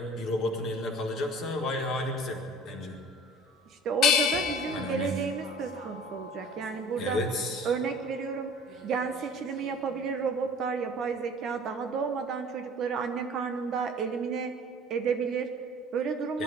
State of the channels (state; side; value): normal; both; correlation 0.46